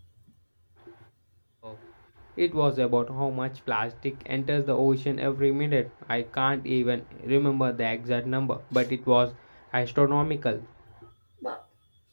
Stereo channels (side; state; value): both; inverted; correlation -1.00